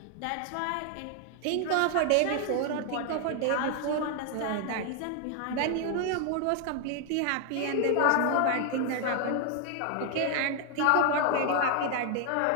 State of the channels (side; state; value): both; different; correlation 0.00